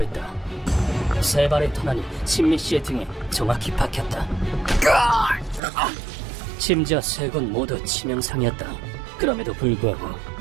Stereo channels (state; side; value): drops out; left; at 5.6 s